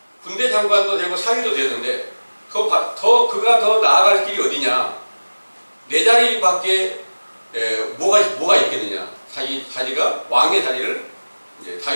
군대 장관도 되고 사위도 되는데 그가 더 나아갈 길이 어디냐? 내 자리밖에 뭐가 있겠느냐? 자기가 왕의 자리를 이제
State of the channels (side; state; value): both; inverted; correlation -1.00